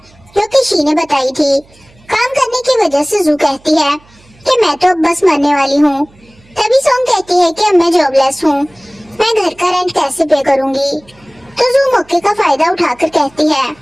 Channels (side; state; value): right; noise; hum, 29 dB below the sound